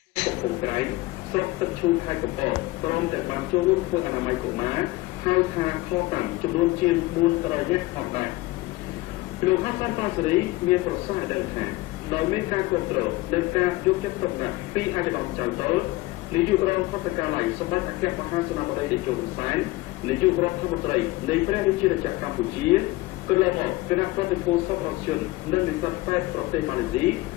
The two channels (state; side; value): quieter; right; 20.0 dB